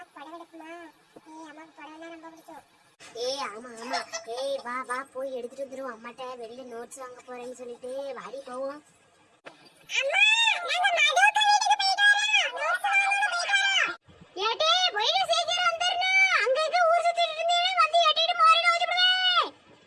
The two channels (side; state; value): both; identical; correlation 1.00